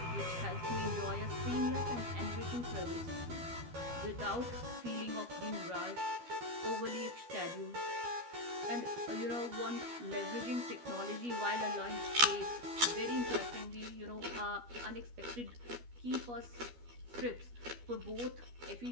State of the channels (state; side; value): late; left; 12 ms